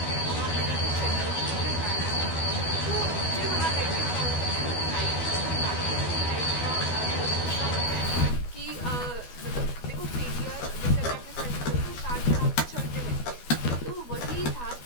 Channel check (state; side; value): late; right; 12 ms